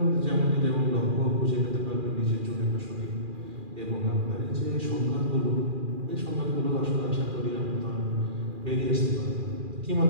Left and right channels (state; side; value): late; left; 2.4 ms